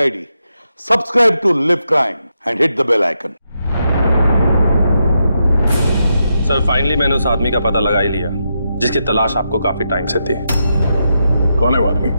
subscribe to Liv Crime and hit the bell icon. Sir, finally मैंने उस आदमी का पता लगा ही लिया जिसकी तलाश आपको काफी टाइम से थी। कौन है वो आदमी?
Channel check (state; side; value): inverted; both; correlation -0.84